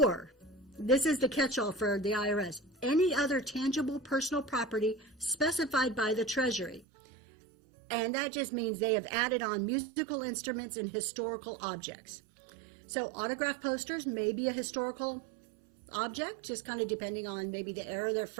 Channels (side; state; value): left; drops out; at 6.9 s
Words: this is the catch-all for the IRS, any other tangible personal property specified by the Treasury. And that just means they have added on musical instruments and historical objects. So autograph posters may be a historical object, just kind of depending on maybe the era they're